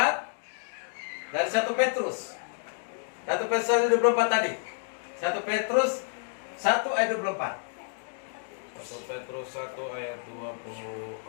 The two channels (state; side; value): silent; right; digital silence